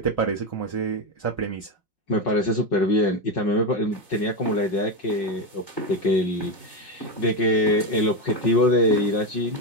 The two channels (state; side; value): late; right; 5.5 ms